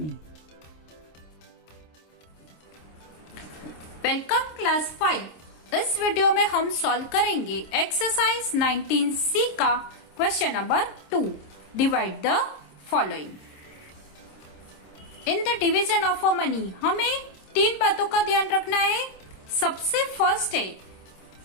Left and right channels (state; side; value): late; right; 26 ms